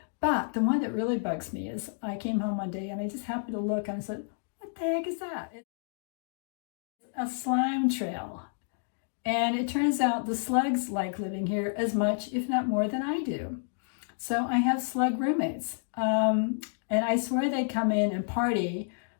But the one that really bugs me is I came home one day and I just happened to look and I said, what the heck is that? It's a slime trail. And it turns out the slugs like living here as much, if not more, than I do. So I have slug roommates. And I swear they come in and party.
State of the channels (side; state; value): right; silent; digital silence